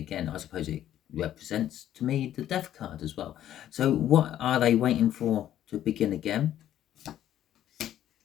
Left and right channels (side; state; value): right; quieter; 11.7 dB